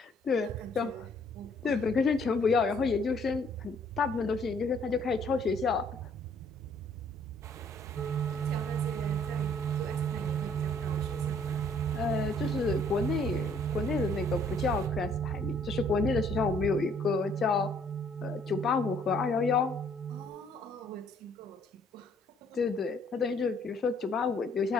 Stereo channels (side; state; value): both; normal; correlation 0.62